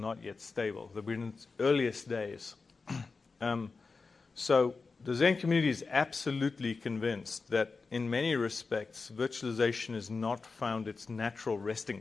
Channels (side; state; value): right; quieter; 4.3 dB